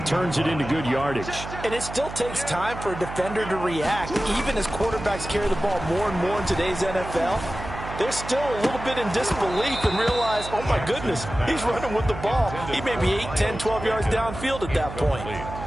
turns it into good yardage. And it still takes time for a defender to react. Even as quarterbacks carry the ball more and more in today's NFL, they're still a little bit in disbelief and realize, oh my goodness, he's running with the ball. He may be 8, 10, 12 yards downfield at that point.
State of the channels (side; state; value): right; noise; hum, 10 dB below the sound